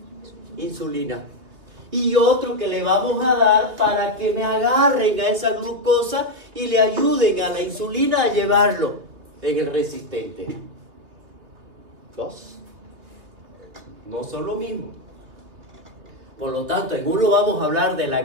insulina. Y otro que le vamos a dar para que me agarren a esa glucosa y le ayuden a la insulina a llevarlo en el resistente. Dos. No son lo mismo. Por lo tanto, en uno vamos a hablar de la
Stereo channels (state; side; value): late; left; 2.8 ms